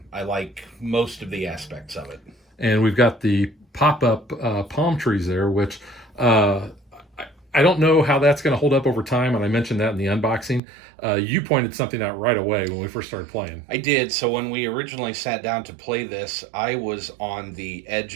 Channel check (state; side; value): drops out; left; at 10.6 s